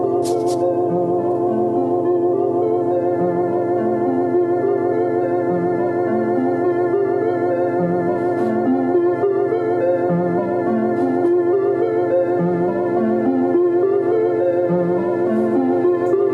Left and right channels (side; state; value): both; identical; correlation 1.00